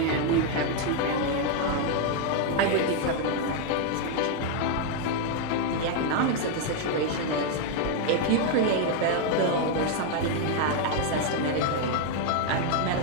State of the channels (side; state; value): both; different; correlation 0.01